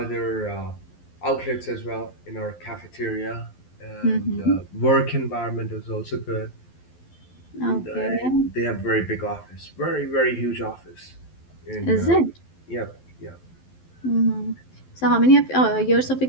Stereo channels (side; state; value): right; late; 12 ms